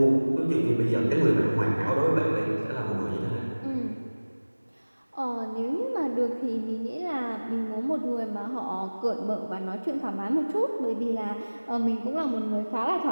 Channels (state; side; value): inverted; both; correlation -1.00